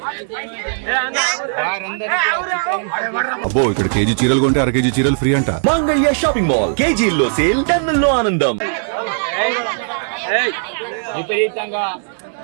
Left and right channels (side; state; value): left; silent; digital silence